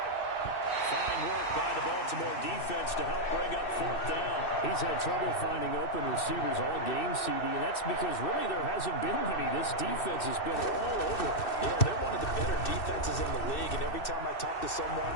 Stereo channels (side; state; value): right; late; 2.6 ms